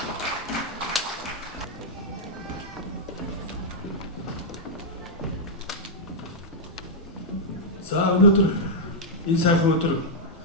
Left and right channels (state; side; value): normal; both; correlation -0.06